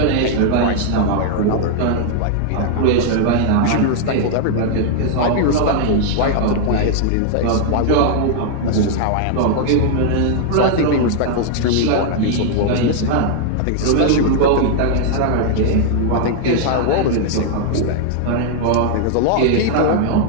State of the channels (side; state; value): both; different; correlation 0.00